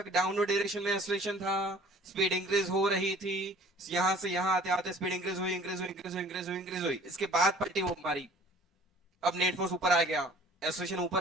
डाउनवर्ड डायरेक्शन में एक्सेलरेशन था, स्पीड इंक्रीज हो रही थी, यहां से यहां आते आते स्पीड इंक्रीज हुई इंक्रीज हुई इंक्रीज हुई इंक्रीज हुई इंक्रीज हुई, इसके बाद पलटी वो मारी। अब नेट फोर्स ऊपर आ गया, एक्सेलरेशन ऊपर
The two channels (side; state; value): both; normal; correlation 0.50